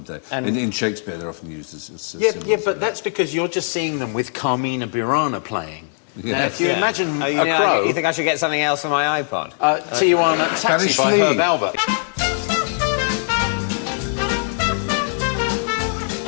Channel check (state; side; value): silent; right; digital silence